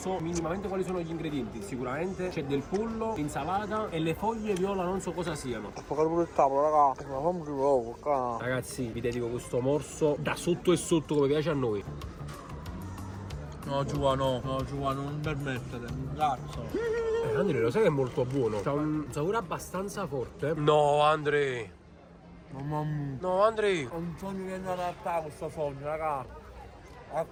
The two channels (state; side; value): identical; both; correlation 1.00